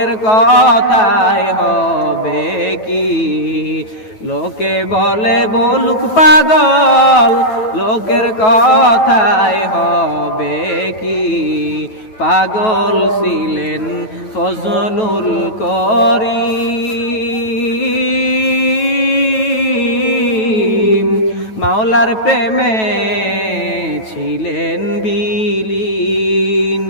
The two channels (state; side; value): late; right; 9.2 ms